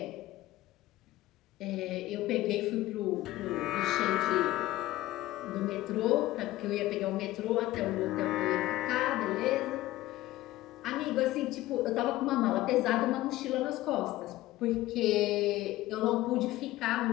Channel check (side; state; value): right; quieter; 16.6 dB